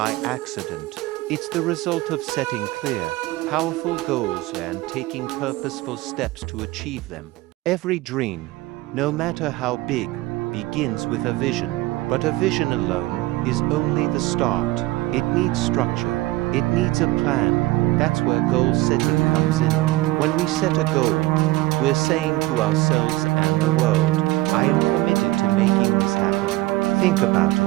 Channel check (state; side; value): quieter; left; 19.0 dB